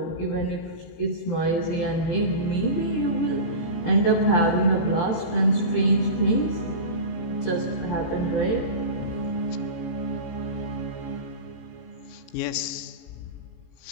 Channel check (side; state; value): right; late; 18 ms